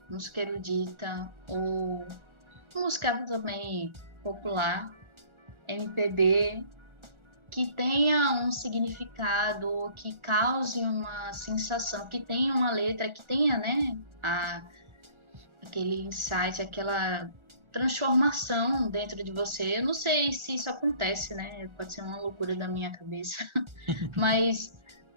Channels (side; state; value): left; late; 1.4 ms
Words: música erudita, ou música também popular, MPB, que tenha um significado, que cause uma sensação, que tenha uma letra, que tenha, né, aquele insight, aquela transformação dentro de você. Eu não sei se isso acontece, né? Pode ser uma loucura da minha cabeça, mas